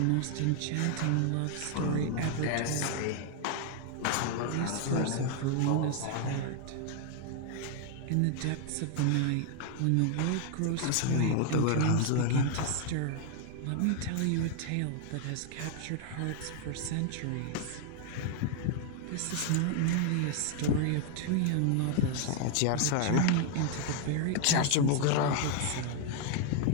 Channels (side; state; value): both; different; correlation 0.00